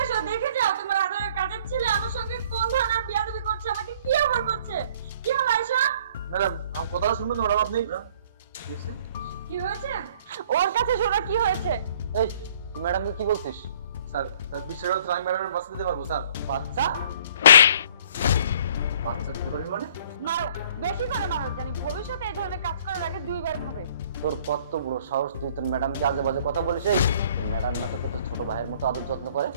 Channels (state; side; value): inverted; both; correlation -0.57